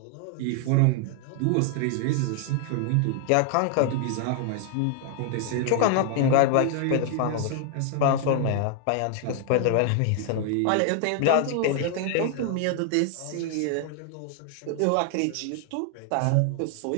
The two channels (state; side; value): different; both; correlation 0.00